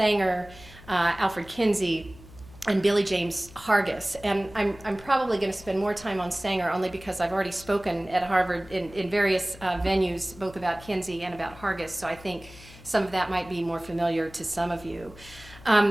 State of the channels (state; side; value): noise; left; hum, 20 dB below the sound